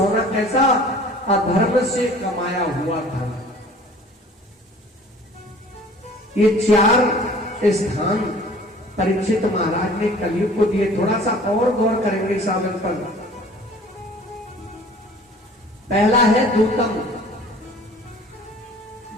कैसा? अधर्म से कमाया हुआ धन। ये 4 स्थान परीक्षित महाराज ने कलयुग को दिए। थोड़ा सा और गौर करेंगे इस आनंद पर। पहला है दूतम,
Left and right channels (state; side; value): normal; both; correlation 0.49